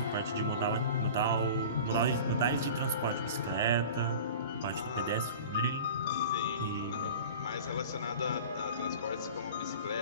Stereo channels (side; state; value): both; inverted; correlation -0.38